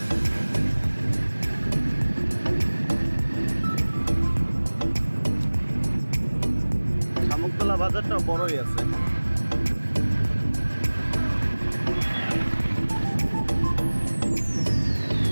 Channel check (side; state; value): both; inverted; correlation -1.00